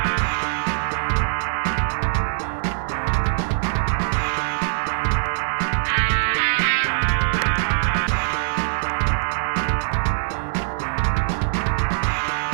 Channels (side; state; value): left; silent; digital silence